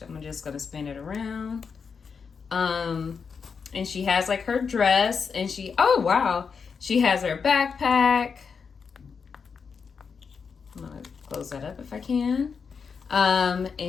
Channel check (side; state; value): right; quieter; 5.8 dB